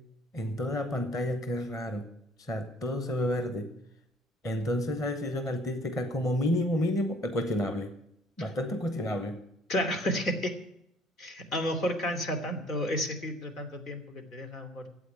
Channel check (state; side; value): normal; both; correlation 0.57